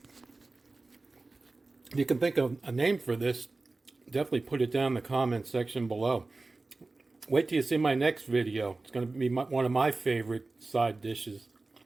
If you can think of a name for this, definitely put it down in the comment section below. Wait till you see my next video. It's going to be one of my favorite side dishes.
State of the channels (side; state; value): left; quieter; 3.4 dB